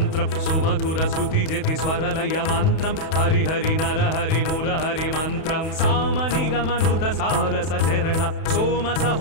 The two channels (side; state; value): right; late; 31 ms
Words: సుమధుర శృతి జతి స్వరలయ మంత్రం హరిహరి నరహరి మురహరి మంత్రం సామనిగమనుత సారస చరణ సోమ